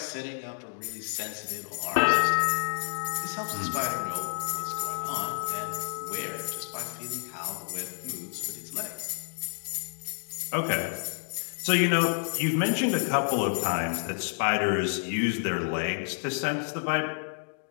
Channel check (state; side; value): silent; right; digital silence